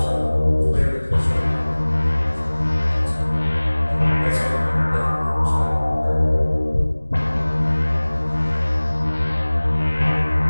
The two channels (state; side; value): inverted; both; correlation -1.00